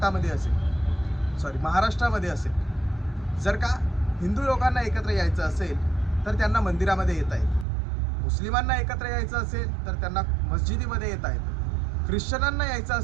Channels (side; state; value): left; drops out; at 7.7 s